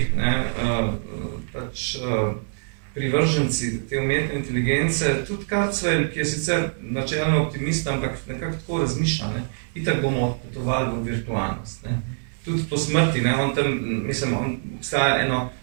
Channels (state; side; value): silent; left; digital silence